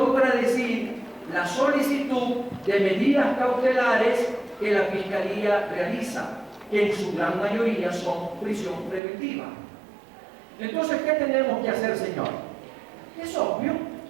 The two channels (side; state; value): left; drops out; at 9.0 s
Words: la solicitud de medidas cautelares que la Fiscalía realiza, que en su gran mayoría son prisión preventiva. Entonces, ¿qué tenemos que hacer, señor? Es obvio